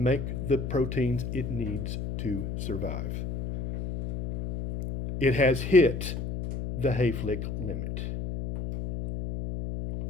the proteins it needs to survive. It has hit the Hayflick limit.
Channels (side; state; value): left; noise; hum, 5 dB below the sound